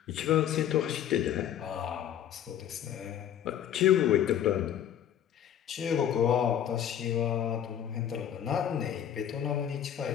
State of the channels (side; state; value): right; quieter; 10.0 dB